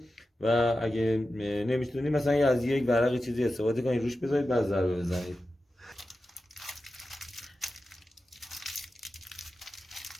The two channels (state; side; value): normal; both; correlation 0.92